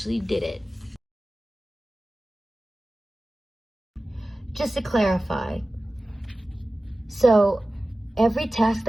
did it. Just to clarify, so every task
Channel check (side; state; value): both; normal; correlation 0.96